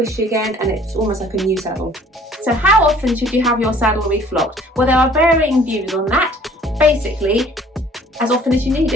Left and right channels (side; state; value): both; normal; correlation 0.54